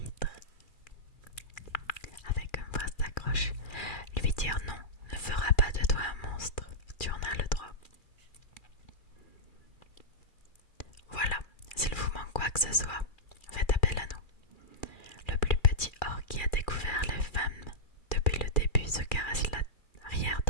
Avec une phrase d'accroche, lui dire non ne fera pas de toi un monstre. Tu en as le droit. que ce soit, faites appel à nous. Le plus petit orc qui a découvert les femmes depuis le début se caresse l'arrière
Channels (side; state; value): right; late; 2.4 ms